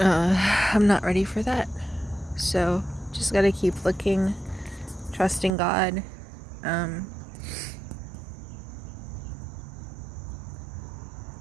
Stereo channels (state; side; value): drops out; left; at 5.5 s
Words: not ready for that. So just gotta keep looking, trusting God.